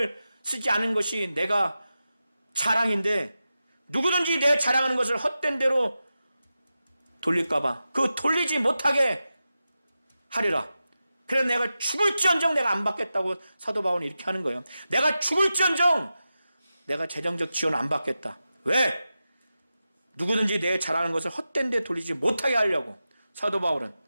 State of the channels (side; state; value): both; inverted; correlation -0.92